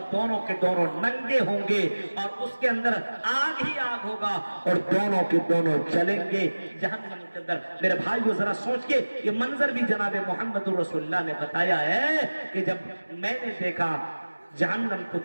दोनों के दोनों नंगे होंगे और उसके अंदर आग ही आग होगा और दोनों के दोनों चलेंगे जहन्नम के अंदर। मेरे भाइयों जरा सोच के, ये मंजर भी जनाब मोहम्मद रसूलुल्लाह ने बताया है कि जब मैंने देखा जहन्नम को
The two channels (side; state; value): both; inverted; correlation -1.00